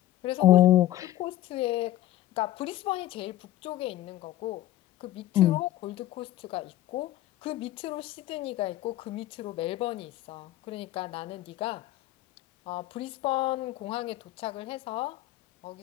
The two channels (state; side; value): quieter; right; 14.1 dB